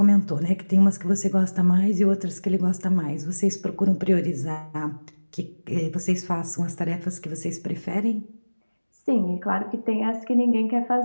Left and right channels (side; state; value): both; inverted; correlation -1.00